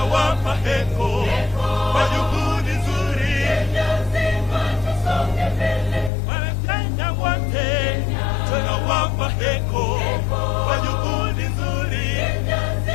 heko kwa juhudi nzuri. Wanakenya wote tunawapa heko kwa juhudi nzuri.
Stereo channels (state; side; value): drops out; right; at 6.1 s